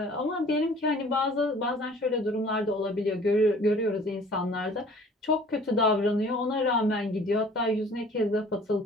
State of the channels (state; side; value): normal; both; correlation 0.50